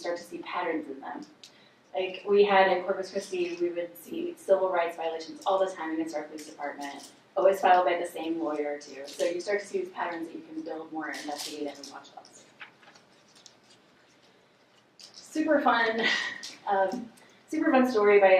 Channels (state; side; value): identical; both; correlation 1.00